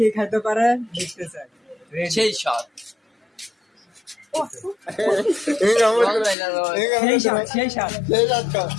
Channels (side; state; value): right; drops out; at 6.4 s